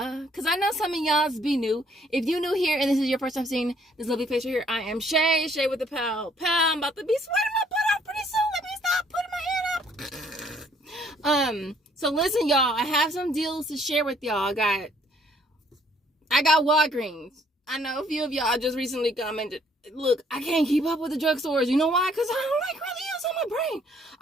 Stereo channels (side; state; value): both; normal; correlation 0.64